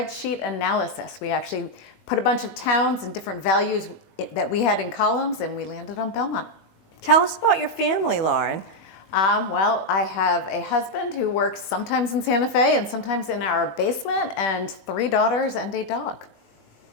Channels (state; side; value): late; right; 21 ms